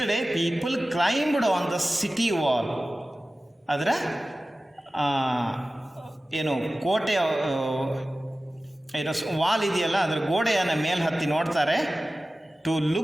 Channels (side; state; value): both; normal; correlation 0.96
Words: day people climbed on the city wall. ಅದರ ಏನು ಕೋಟೆ ಏನೋ ವಾಲ್ ಇದೆಯಲ್ಲ, ಅದರ ಗೋಡೆಯನ್ನು ಮೇಲೆ ಹತ್ತಿ ನೋಡ್ತಾರೆ. To